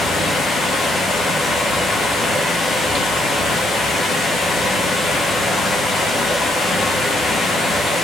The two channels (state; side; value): normal; both; correlation 0.73